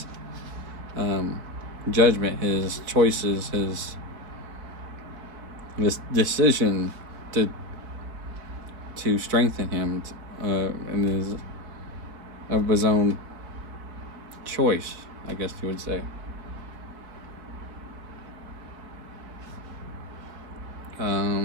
judgment, his choices, his decision to strengthen him in his own choice, I guess you would say.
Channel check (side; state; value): left; late; 4.4 ms